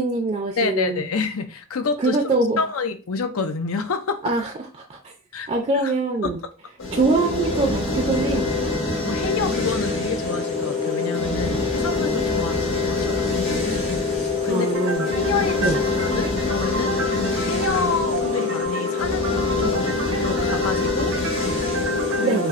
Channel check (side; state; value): both; normal; correlation 0.29